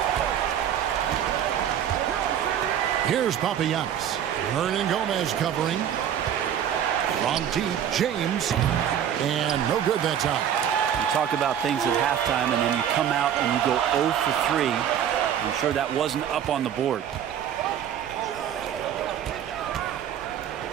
Here's Papagiannis. Hernan Gomez covering. From deep, James. And no good that time. You talk about things at halftime, and then you come out and you go 0 for 3. I'm sure that wasn't up on the board.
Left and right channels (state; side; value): quieter; left; 9.5 dB